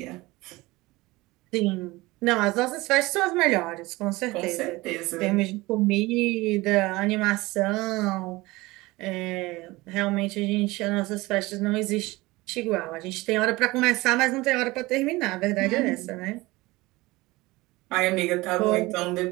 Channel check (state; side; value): quieter; left; 21.0 dB